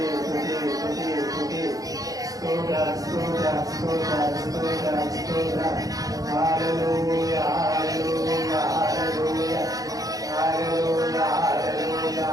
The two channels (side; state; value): left; late; 0.17 ms